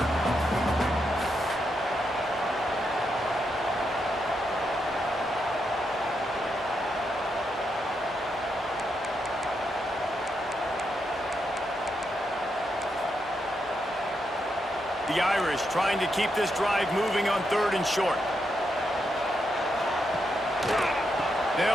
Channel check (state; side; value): normal; both; correlation 0.82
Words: The Irish trying to keep this drive moving on 3rd and short.